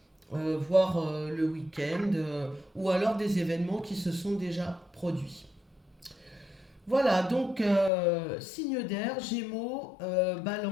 Voire le week-end, ou alors des événements qui se sont déjà produits. Voilà, donc signe d'air, Gémeaux,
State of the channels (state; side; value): drops out; right; at 7.9 s